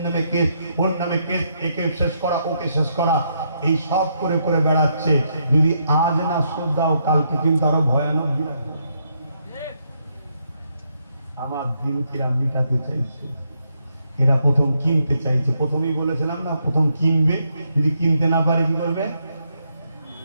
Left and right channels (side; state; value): both; inverted; correlation -0.77